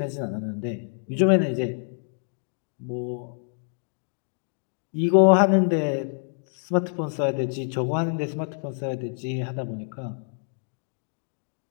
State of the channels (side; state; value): right; silent; 61 dB below the other